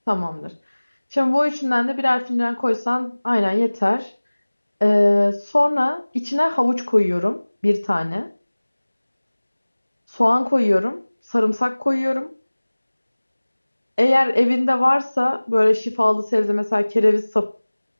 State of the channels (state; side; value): inverted; both; correlation -1.00